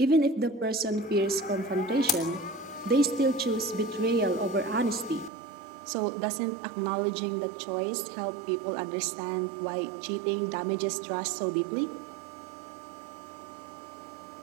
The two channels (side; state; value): left; drops out; at 5.3 s